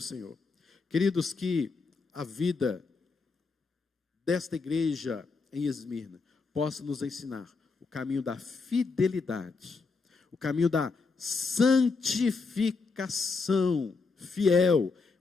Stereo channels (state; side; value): quieter; right; 4.4 dB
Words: Queridos, que a vida desta igreja em Esmirna possa nos ensinar o caminho da fidelidade, o caminho da santificação fiel.